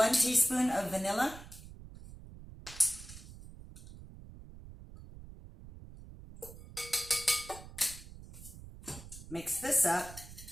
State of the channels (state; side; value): noise; right; rumble, 15 dB below the sound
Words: teaspoon of vanilla. Mix this up,